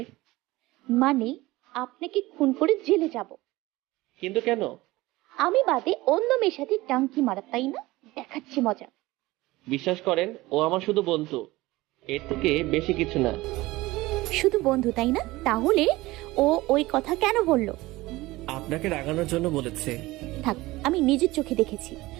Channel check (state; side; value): quieter; left; 19.5 dB